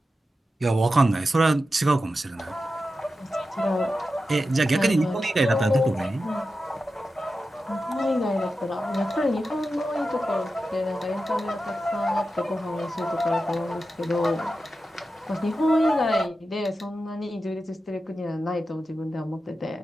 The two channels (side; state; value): both; normal; correlation 0.91